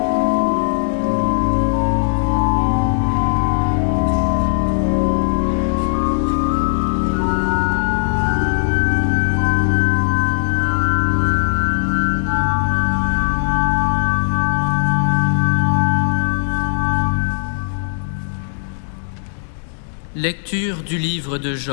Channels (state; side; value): silent; right; digital silence